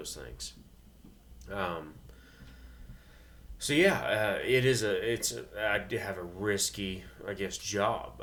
things. I have a risky, job.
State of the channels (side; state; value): both; identical; correlation 1.00